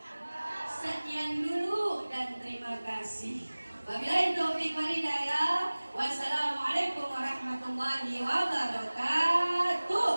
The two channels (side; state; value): both; inverted; correlation -1.00